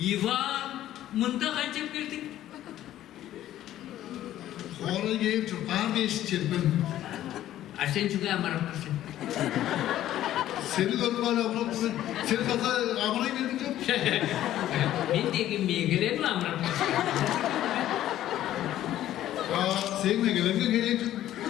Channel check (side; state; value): right; quieter; 13.0 dB